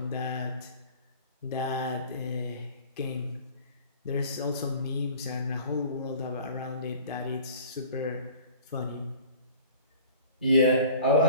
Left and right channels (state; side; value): inverted; both; correlation -0.46